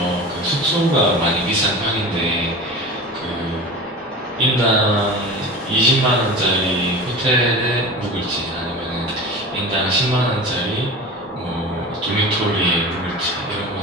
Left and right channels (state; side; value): normal; both; correlation 0.33